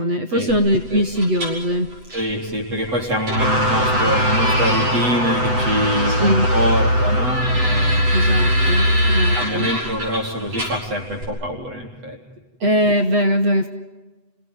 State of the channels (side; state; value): left; late; 8.0 ms